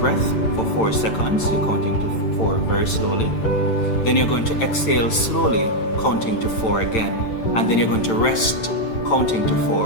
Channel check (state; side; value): late; right; 9.0 ms